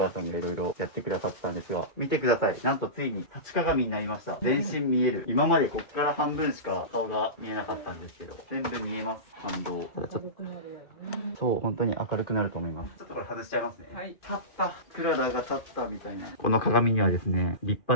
母さんがいろいろやってくださったんですが。見てください。なんとついに立ち鏡になりました。全身見える。今までこっから半分しか顔が見えなかったんですけど、全部見えます。反動。ただちょっと、そう、本当に明るくなると思います。ちょっとこれ外しちゃいますね。はい。立った。クララが立ったみたいな。この鏡にはですね、立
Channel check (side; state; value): right; late; 2.5 ms